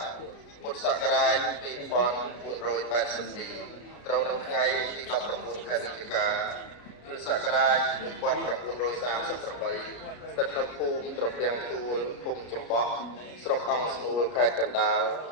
ពុទ្ធសករាជ2482ត្រូវនៅថ្ងៃទី19ខែវិច្ឆិកាគ្រិស្តសករាជ1938ស្ថិតនៅភូមិត្រពាំងទួលភូមិចំបក់ស្រុកអង្គស្នួលខេត្តកណ្ដាលក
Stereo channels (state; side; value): late; right; 33 ms